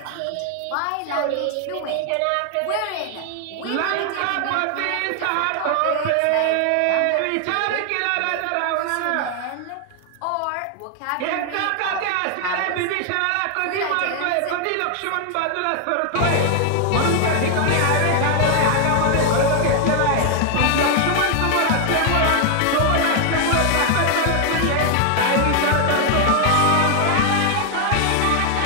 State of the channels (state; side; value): different; both; correlation 0.00